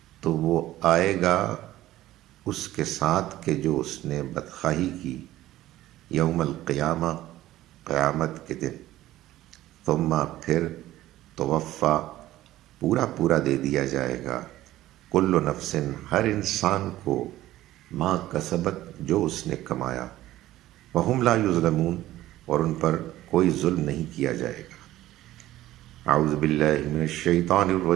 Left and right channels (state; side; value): quieter; left; 15.0 dB